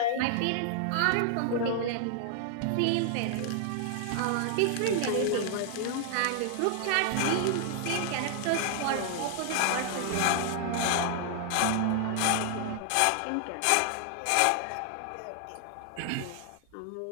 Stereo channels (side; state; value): both; different; correlation 0.00